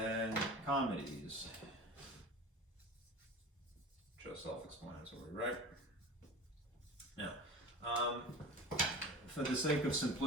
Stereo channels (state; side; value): normal; both; correlation 0.35